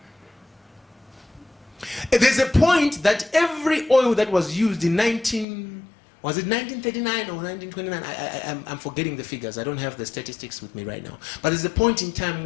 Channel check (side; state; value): right; drops out; at 5.5 s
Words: There's a point that every oil that was used in 1939 or 1929? I'm forgetting the figures. I don't have the statistics with me right now. But there's a point in time